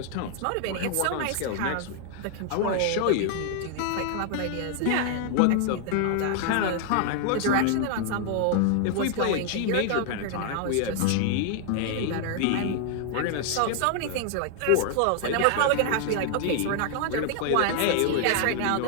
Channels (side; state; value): both; different; correlation 0.00